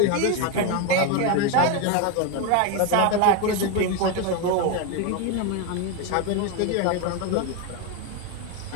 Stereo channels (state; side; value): different; both; correlation 0.03